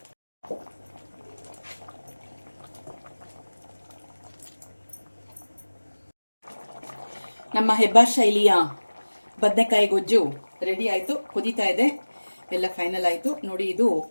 ನಮ್ಮ ಹೆಬ್ಬಾರ್ ಶೈಲಿಯ ಬದನೆಕಾಯಿ ಗೊಜ್ಜು ರೆಡಿ ಆಯಿತು. ಕುದೀತಾ ಇದೆ. ಎಲ್ಲ ಫೈನಲ್ ಆಯಿತು ನೋಡಿ. ಇದು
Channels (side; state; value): both; inverted; correlation -1.00